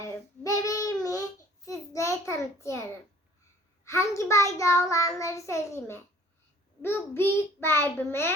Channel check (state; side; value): normal; both; correlation 0.54